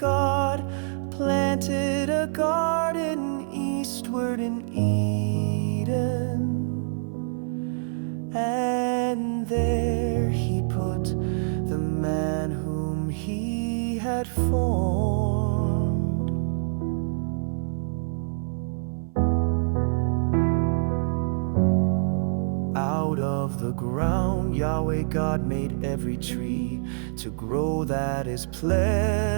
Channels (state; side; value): silent; left; 61 dB below the other